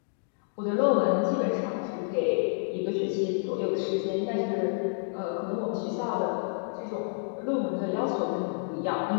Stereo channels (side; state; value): right; silent; digital silence